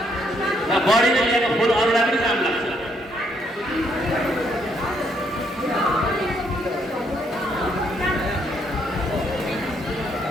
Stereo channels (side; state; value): both; normal; correlation 0.72